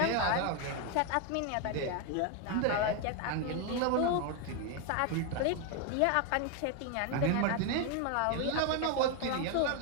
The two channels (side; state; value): both; different; correlation 0.01